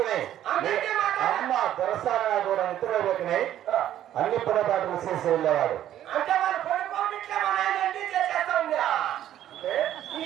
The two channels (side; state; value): left; quieter; 11.8 dB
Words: అమ్మ దొరసారా కూడా నిద్ర లేకనే అన్ని పొరపాట్లు చేసి వెళ్ళేవాడు. అంటే వాళ్ళు పడుకోవట్లే మా నాయన అన్ని చేసేస్తా ఉందా?